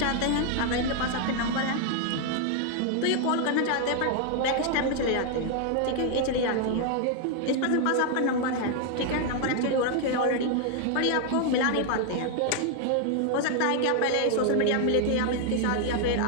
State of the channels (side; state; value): both; different; correlation 0.00